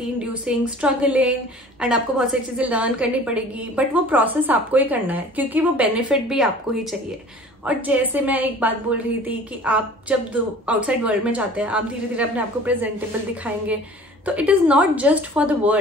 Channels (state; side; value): normal; both; correlation 0.46